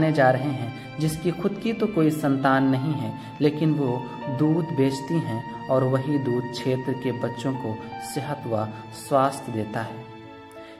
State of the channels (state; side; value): identical; both; correlation 1.00